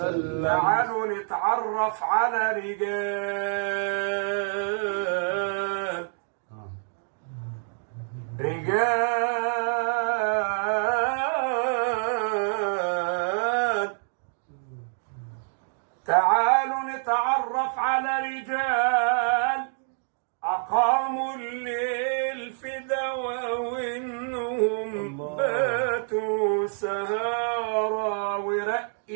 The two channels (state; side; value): silent; left; 60 dB below the other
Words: تعالوا نتعرف على رجال تعالوا نتعرف على رجال أقاموا الليل في دوا وإنهم باتوا سهارا ورق